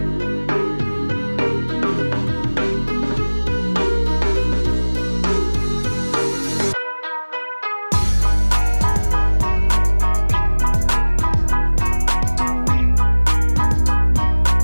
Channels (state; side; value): inverted; both; correlation -1.00